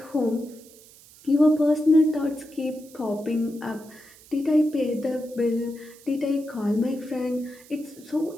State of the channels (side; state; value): right; noise; hiss, 23 dB below the sound